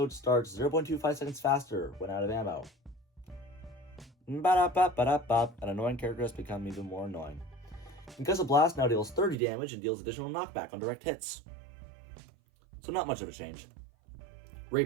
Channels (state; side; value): drops out; left; at 9.3 s